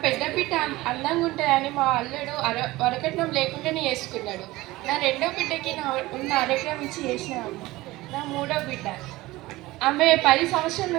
పెద్ద బిడ్డ అందంగా ఉంటుందని మా అల్లుడు వరకట్నం లేకుండానే చేసుకున్నాడు. నా రెండో బిడ్డకి ఉన్న అరకరం ఇచ్చి చేసినాను. నా మూడో బిడ్డ ఆమె 10 సంవత్సరాల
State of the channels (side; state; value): left; quieter; 19.0 dB